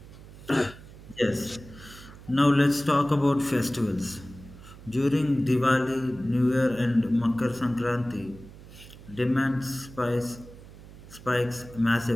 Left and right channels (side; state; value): right; noise; hum, 18 dB below the sound